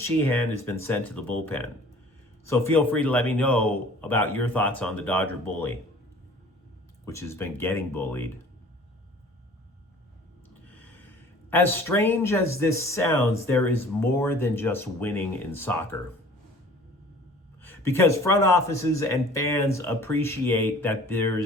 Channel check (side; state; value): both; normal; correlation 0.48